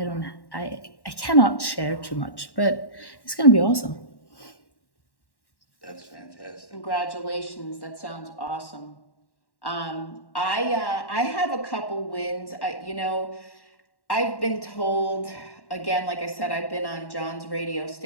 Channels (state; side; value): late; right; 1.1 ms